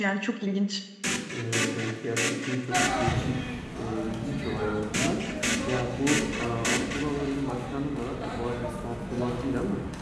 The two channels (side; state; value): both; identical; correlation 1.00